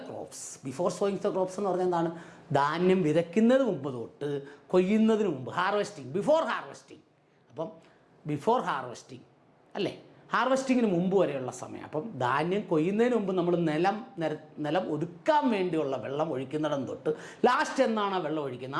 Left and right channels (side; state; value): both; identical; correlation 1.00